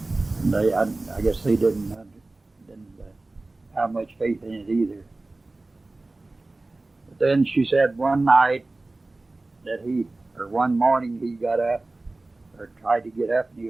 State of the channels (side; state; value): left; quieter; 3.1 dB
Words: And I guess they didn't have much faith in it either. But then she said one night that one morning he got up, or tried to get up, and